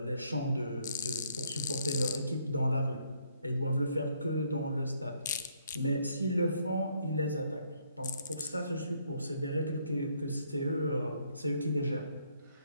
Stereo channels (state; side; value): inverted; both; correlation -0.70